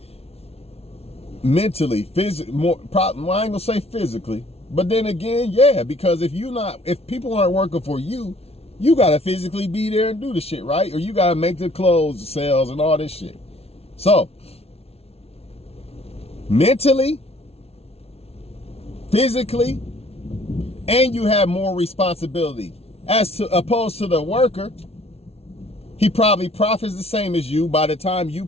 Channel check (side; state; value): right; late; 0.30 ms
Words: physically, more, I ain't gonna say physically, but then again, yeah, because if people aren't working for you, you gotta physically be there and do the shit, right? Or you gotta make the clothes, the sales, and all this shit. So, mentally, physically, and you have more responsibility. Opposed to the worker, he probably profits the same as you. By the time you